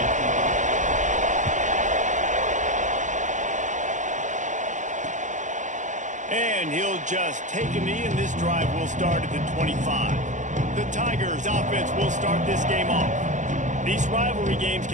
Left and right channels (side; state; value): left; late; 0.36 ms